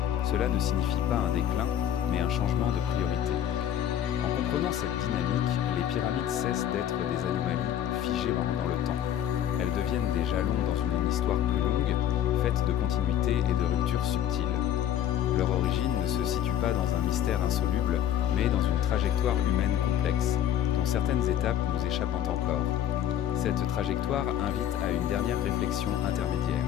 Cela ne signifie pas un déclin, mais un changement de priorité. En comprenant cette dynamique, les pyramides cessent d'être des anomalies figées dans le temps. Elles deviennent des jalons dans une histoire plus longue, faite de continuité et de ruptures subtiles. Leur origine ne se situe pas dans un mystère insoluble, mais dans une trajectoire humaine complexe, dont certaines étapes nous échappent encore. Cette trajectoire invite à une dernière réflexion intermédiaire.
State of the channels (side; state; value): right; quieter; 10.6 dB